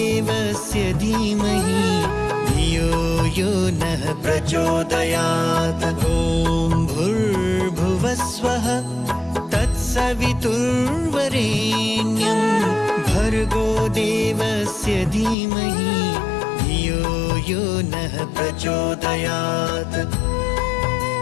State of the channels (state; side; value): drops out; right; at 15.4 s